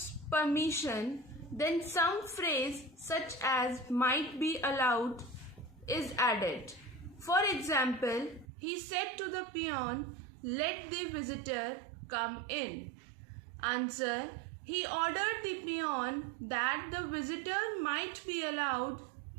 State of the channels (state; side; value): drops out; left; at 8.5 s